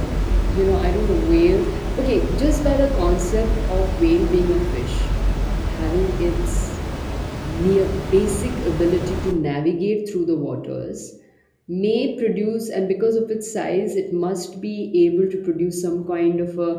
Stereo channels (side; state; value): both; identical; correlation 1.00